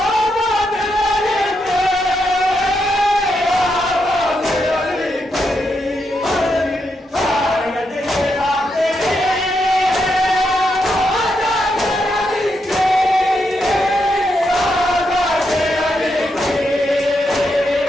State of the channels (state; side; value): normal; both; correlation 0.82